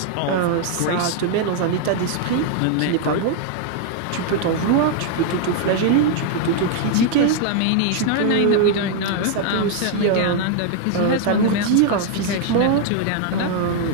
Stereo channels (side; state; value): both; different; correlation 0.00